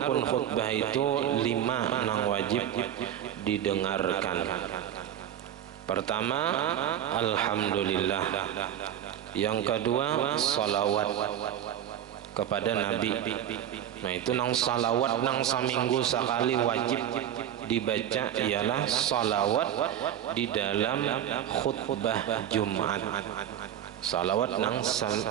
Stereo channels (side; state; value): left; quieter; 10.6 dB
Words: khutbah itu 5 nang wajib didengarkan. Pertama, alhamdulillah. Yang kedua, salawat kepada Nabi. Nah itu nang salawat nang seminggu sekali wajib dibaca ialah salawat di dalam khutbah Jumat. Salawat nang